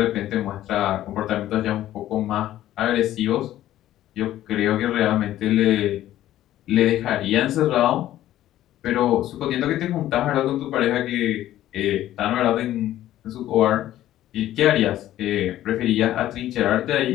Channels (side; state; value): right; quieter; 13.4 dB